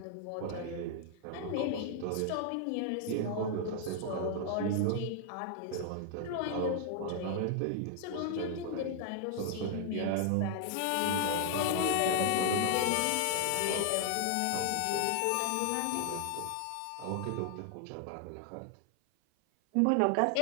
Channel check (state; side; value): different; both; correlation 0.00